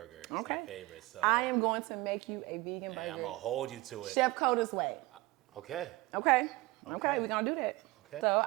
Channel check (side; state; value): left; quieter; 21.4 dB